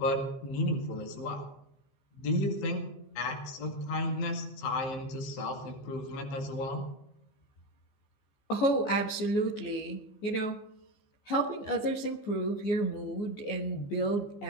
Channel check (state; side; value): late; right; 14 ms